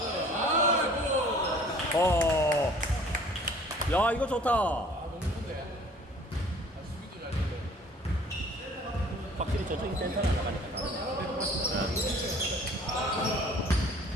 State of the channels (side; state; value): both; normal; correlation 0.52